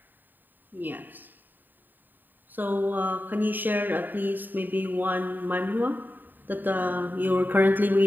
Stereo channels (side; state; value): left; late; 0.090 ms